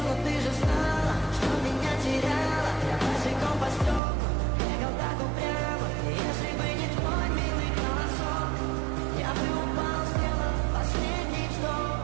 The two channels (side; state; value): left; drops out; at 4.0 s